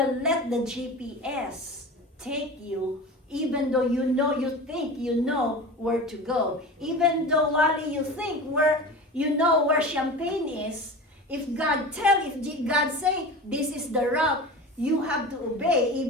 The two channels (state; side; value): normal; both; correlation 0.32